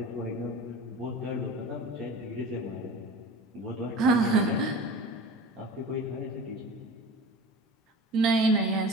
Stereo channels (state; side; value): normal; both; correlation 0.36